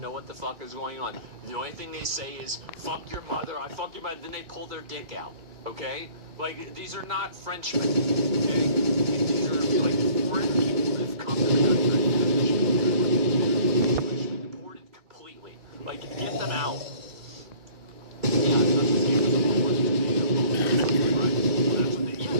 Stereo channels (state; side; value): late; left; 2.2 ms